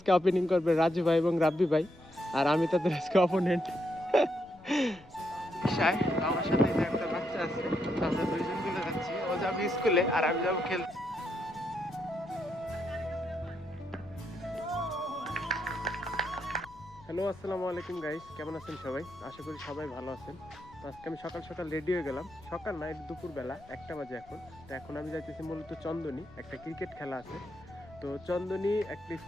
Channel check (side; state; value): left; noise; rumble, 23 dB below the sound